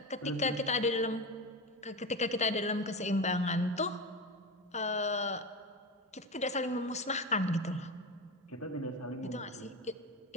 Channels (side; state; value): both; normal; correlation 0.22